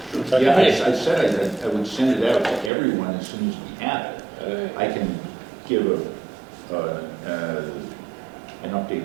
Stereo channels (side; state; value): left; drops out; at 2.7 s